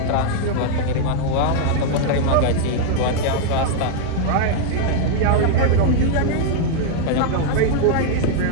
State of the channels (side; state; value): both; different; correlation -0.01